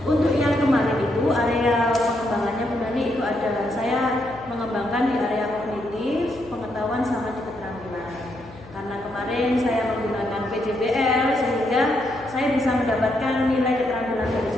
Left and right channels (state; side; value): noise; left; hum, 20 dB below the sound